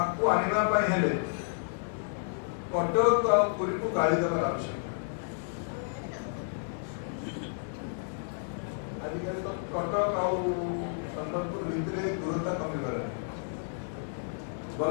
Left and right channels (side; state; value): right; silent; digital silence